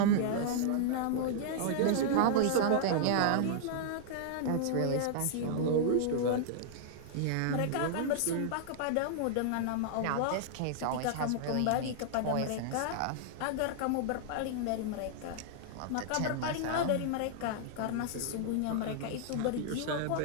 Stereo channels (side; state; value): both; different; correlation -0.01